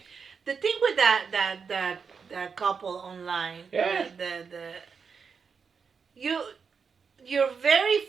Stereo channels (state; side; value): quieter; left; 5.8 dB